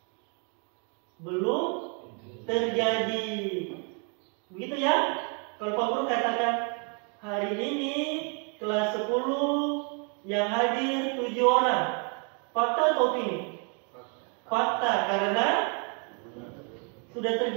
belum terjadi. Begitu ya? Kalau Pak Guru katakan hari ini kelas 10 yang hadir 7 orang. Fakta atau opini? Fakta, karena sudah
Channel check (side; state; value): left; quieter; 37.5 dB